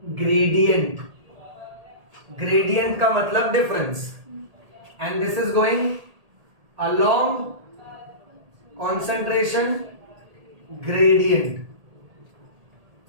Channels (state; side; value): late; left; 1.8 ms